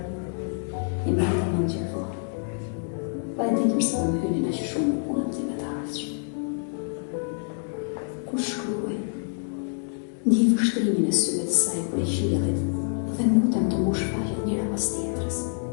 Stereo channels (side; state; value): right; silent; digital silence